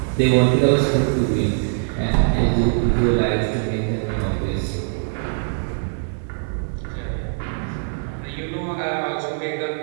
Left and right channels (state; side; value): silent; left; digital silence